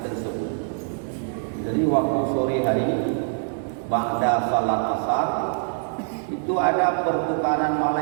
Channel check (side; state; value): left; silent; digital silence